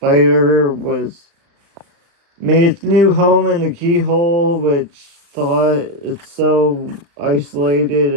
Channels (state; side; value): late; left; 35 ms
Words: made its new home in a keyhole, which thought it's so